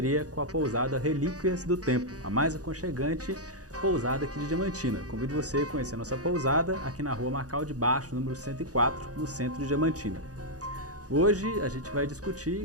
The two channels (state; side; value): late; left; 0.67 ms